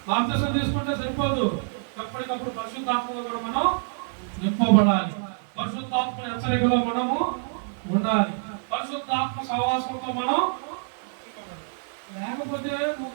బాప్తిసం తీసుకుంటే సరిపోదు, ఎప్పటికప్పుడు పరిశుద్ధాత్మలో కూడా మనం నింపబడాలి. పరిశుద్ధాత్మ హెచ్చరికలో మనము ఉండాలి, పరిశుద్ధాత్మ సహవాసంతో మనం. లేకపోతే నువ్వు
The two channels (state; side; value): silent; left; digital silence